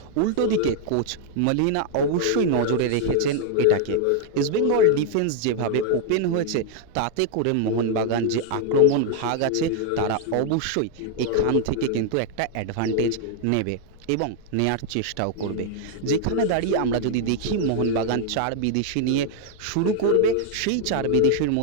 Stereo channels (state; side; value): different; both; correlation 0.00